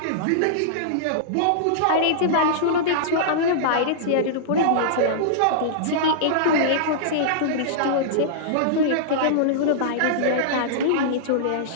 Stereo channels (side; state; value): both; different; correlation -0.02